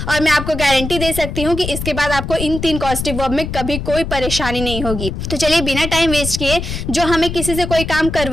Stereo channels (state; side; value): noise; left; rumble, 6 dB below the sound